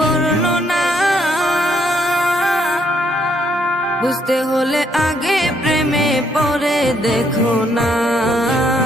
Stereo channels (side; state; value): both; normal; correlation 0.71